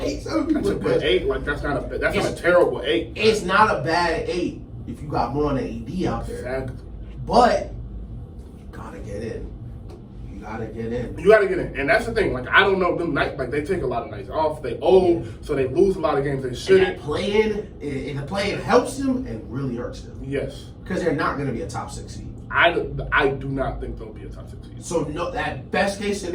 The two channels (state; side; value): identical; both; correlation 1.00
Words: people. That's 8. Like that's not a terrible 8. It's not a bad 8 if you got Braun and AD out there. Exactly. But you gotta get in. You gotta get in, and that's the thing. Like I don't know them night. Like they take a lot of nights off. They old, so they lose a lot of games they shouldn't. And the playing helps them and really hurts them. Yes, because they're not going to be a top 6 seed. I do not think they'll be a top 6 seed. So no, that best case